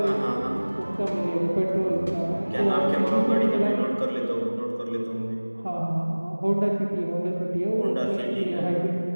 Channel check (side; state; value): both; inverted; correlation -1.00